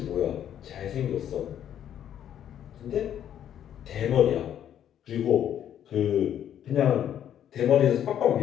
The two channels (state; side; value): quieter; right; 10.2 dB